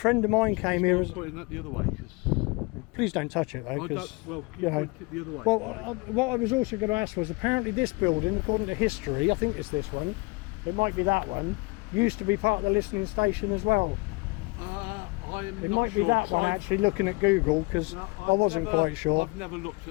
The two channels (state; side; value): quieter; right; 26.7 dB